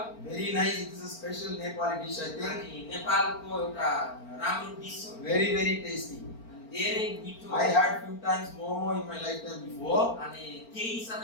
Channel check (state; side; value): late; right; 4.4 ms